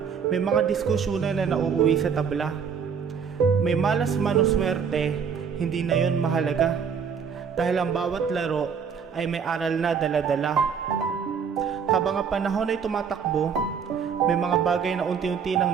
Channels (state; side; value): quieter; left; 6.7 dB